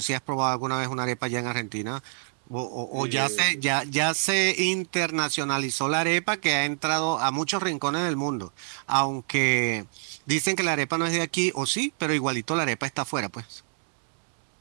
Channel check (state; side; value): silent; left; digital silence